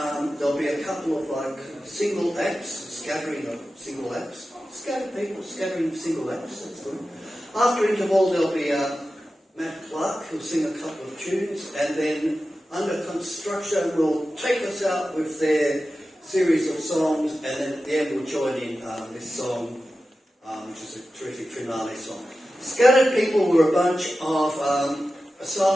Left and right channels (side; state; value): both; normal; correlation 0.93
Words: there'll be a couple of single acts, scattering of single acts. Scattered people scattering single acts, that's good. After interval there'll be Matt Clark who'll sing a couple of tunes, and then Under Construction will take us out with their series of songs, and then at the end we'll join in this song, which is a terrific finale song. Scattered people were a bunch of